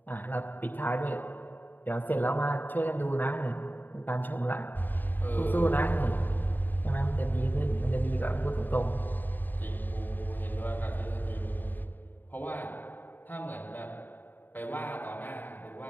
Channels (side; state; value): right; late; 0.090 ms